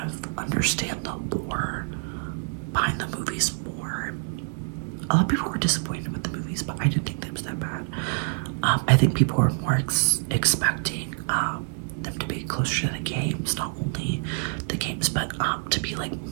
understand the lore behind the movies more. A lot of people were disappointed with the movies, but I didn't think that was that bad. I think people were more expecting them to be closer to the games, not only the games, but to be like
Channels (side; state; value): left; silent; digital silence